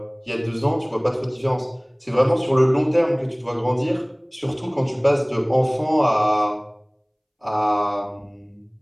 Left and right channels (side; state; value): both; identical; correlation 1.00